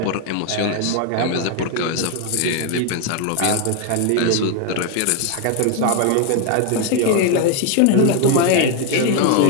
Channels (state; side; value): different; both; correlation 0.01